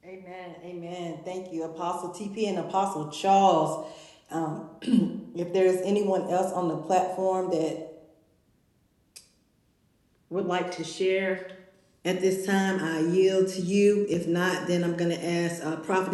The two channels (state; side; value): identical; both; correlation 1.00